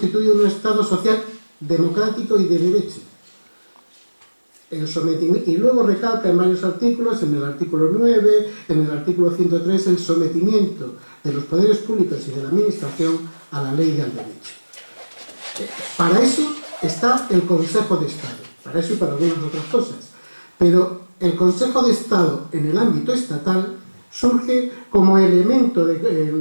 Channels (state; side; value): inverted; both; correlation -1.00